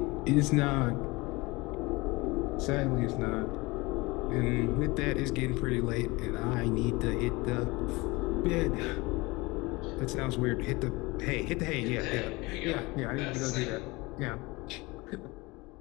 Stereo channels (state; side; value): quieter; right; 23.6 dB